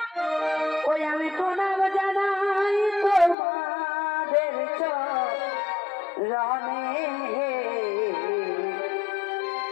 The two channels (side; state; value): right; drops out; at 3.4 s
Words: ওই আমি প্রণাম জানাই তোমাদের চরণে